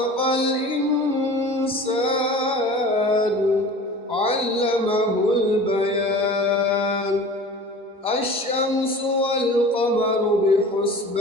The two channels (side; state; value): both; normal; correlation 0.40